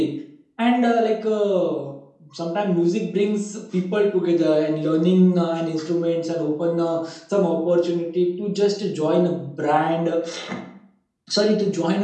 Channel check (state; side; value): identical; both; correlation 1.00